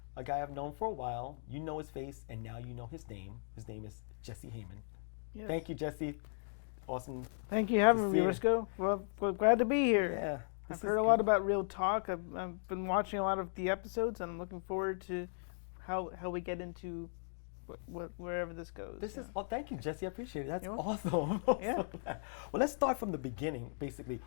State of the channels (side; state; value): right; silent; digital silence